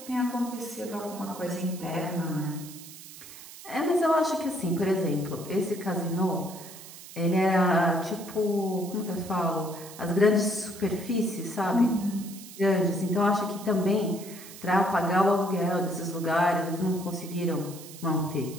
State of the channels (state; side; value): noise; right; hiss, 16 dB below the sound